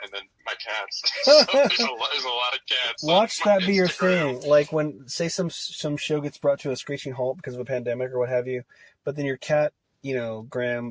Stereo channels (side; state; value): both; identical; correlation 1.00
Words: and then my cats. So there's a lot of cats. Watch that be your thing. Like when, say, some show gets brought to a screeching halt because of a pandemic or what have you, but then your cat,